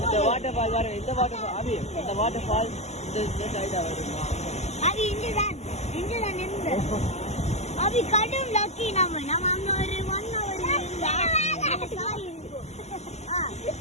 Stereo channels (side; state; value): right; late; 0.33 ms